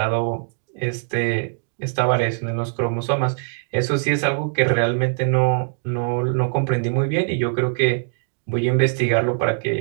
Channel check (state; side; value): silent; left; digital silence